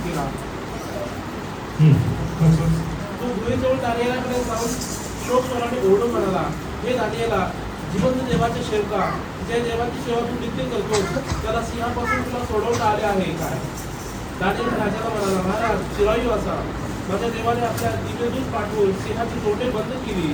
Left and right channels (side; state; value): both; identical; correlation 1.00